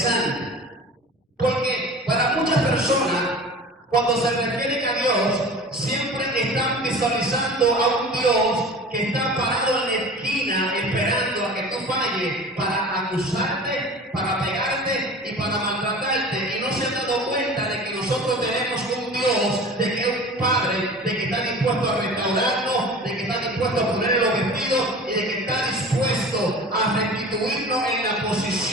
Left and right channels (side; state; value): both; normal; correlation 0.38